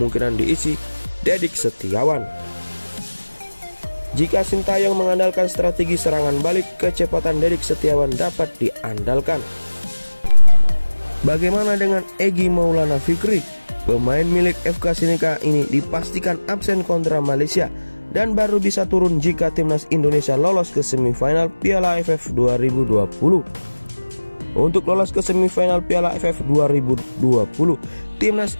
diisi Dedik Setiawan. Jika Sintayong mengandalkan strategi serangan balik, kecepatan Dedik Setiawan dapat diandalkan. Bagaimana dengan Egy Maulana Fikri? Pemain milik FK Sinika ini dipastikan absen kontra Malaysia dan baru bisa turun jika Timnas Indonesia lolos ke semifinal Piala AFF 2020. Untuk lolos ke semifinal Piala AFF 2020, Timnas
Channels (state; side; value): inverted; both; correlation -1.00